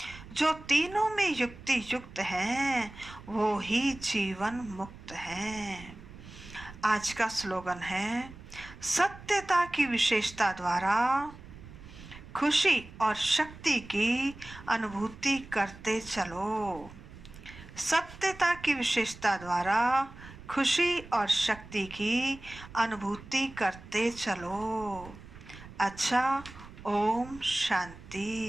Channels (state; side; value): noise; right; rumble, 17 dB below the sound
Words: जो तीनों में युक्ति युक्त हैं वो ही जीवन मुक्त हैं। आज का स्लोगन है, सत्यता की विशेषता द्वारा खुशी और शक्ति की अनुभूति करते चलो। सत्यता की विशेषता द्वारा खुशी और शक्ति की अनुभूति करते चलो। अच्छा, ओम